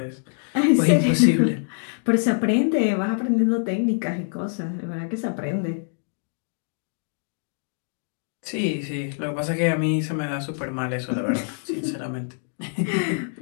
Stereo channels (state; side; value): silent; right; 62 dB below the other